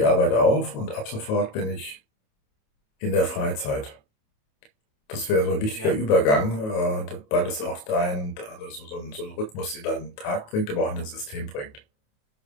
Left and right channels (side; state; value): right; late; 28 ms